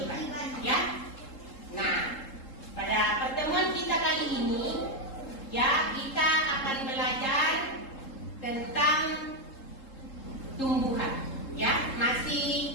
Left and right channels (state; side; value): late; right; 3.7 ms